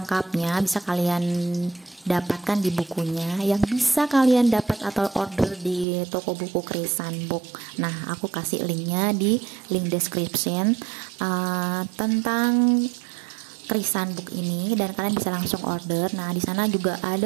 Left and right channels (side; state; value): left; drops out; at 5.9 s